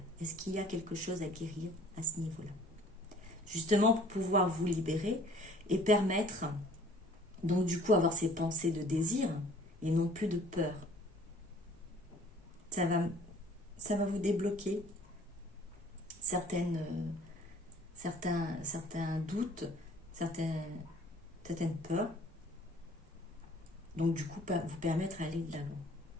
Est-ce qu'il y a quelque chose à guérir à ce niveau-là? Justement pour pouvoir vous libérer et permettre, donc du coup avoir ces pensées de désir et non plus de peur. Ça va vous débloquer certains doutes, certaines peurs. Donc du coup, vous permettre d'aller de l'avant.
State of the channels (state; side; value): normal; both; correlation 0.54